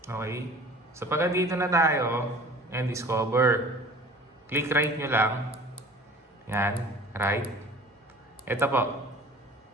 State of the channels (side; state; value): both; normal; correlation 0.44